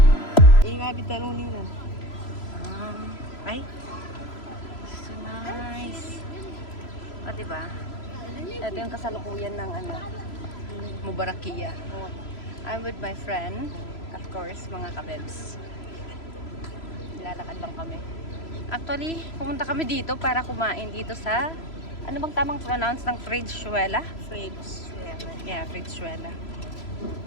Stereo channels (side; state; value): right; late; 3.0 ms